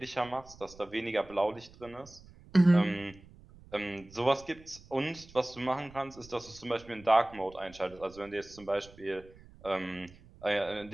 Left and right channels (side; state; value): right; noise; rumble, 22 dB below the sound